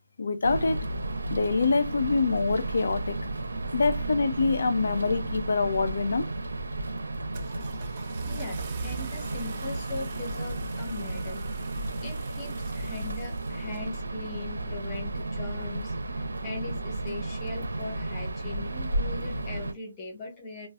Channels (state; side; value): inverted; both; correlation -0.85